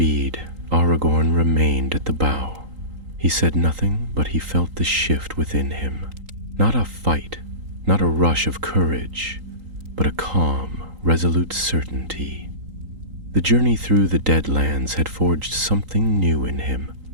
Aragorn remained at the bow. He said nothing, but he felt the shift within him. Not a fight, not a rush of courage, but a calm, resolute certainty. The journey through the Deadlands had forged something new in him,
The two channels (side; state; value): left; late; 3.8 ms